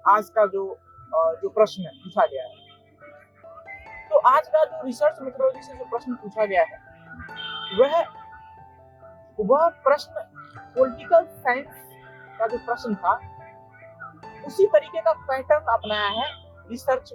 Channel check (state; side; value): identical; both; correlation 1.00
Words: आज का जो प्रश्न पूछा गया है। तो आज का जो रिसर्च मेथोडोलॉजी से जो प्रश्न पूछा गया है वह प्रश्न पॉलिटिकल साइंस का जो प्रश्न था उसी तरीके का पैटर्न अपनाया है रिसर्च